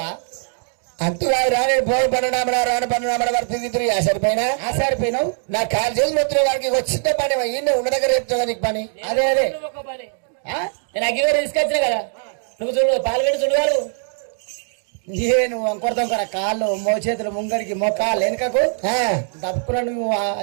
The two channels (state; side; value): silent; left; digital silence